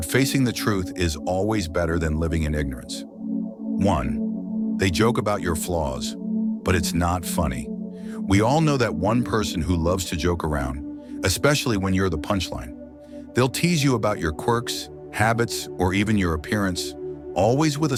facing the truth is always better than living in ignorance. 1. They joke about your flaws, but it's not funny. We all know that one person who loves to joke around, especially when you're the punchline. They'll tease you about your quirks, habits, or even your appearance, always with a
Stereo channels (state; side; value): identical; both; correlation 1.00